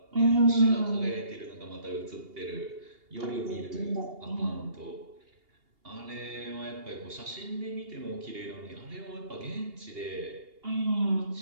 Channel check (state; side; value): late; left; 2.8 ms